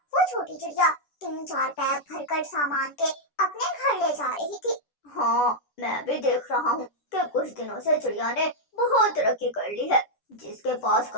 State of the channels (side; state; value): right; late; 10 ms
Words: छोटी चिड़िया 3-4 बैग भरकर सामान के अपने घर ले जा रही थी। हाँ, मैं भी देख रहा हूँ कि कुछ दिनों से चिड़िया ने बहुत तरक्की कर ली है। जिसके पास